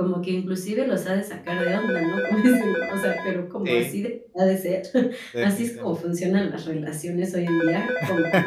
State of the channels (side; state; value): both; identical; correlation 1.00